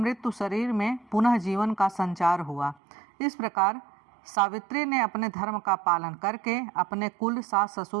शरीर में पुनः जीवन का संचार हुआ। इस प्रकार सावित्री ने अपने धर्म का पालन करके अपने कुल, सास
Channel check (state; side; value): drops out; left; at 2.8 s